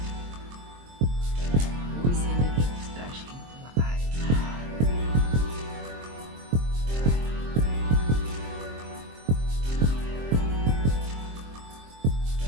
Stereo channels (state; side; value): late; left; 23 ms